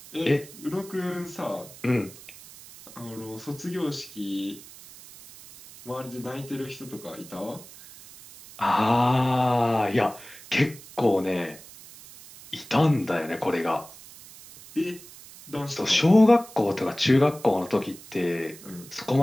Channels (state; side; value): noise; right; hiss, 19 dB below the sound